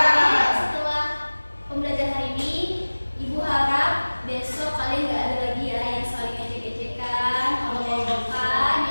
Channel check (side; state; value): both; inverted; correlation -1.00